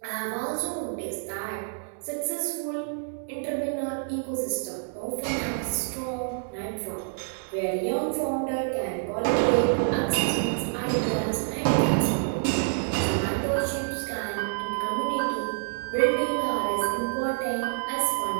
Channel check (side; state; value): left; silent; digital silence